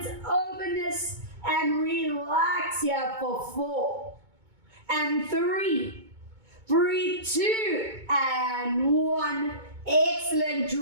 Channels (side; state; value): left; late; 2.2 ms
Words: open this and relax here for 4. And 3. Breathe 2 and 1. Excellent.